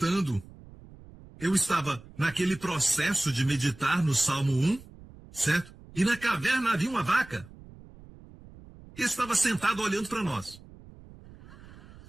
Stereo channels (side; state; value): right; noise; rumble, 20 dB below the sound